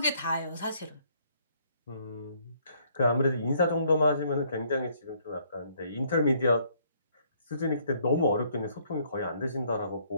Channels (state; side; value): inverted; both; correlation -0.66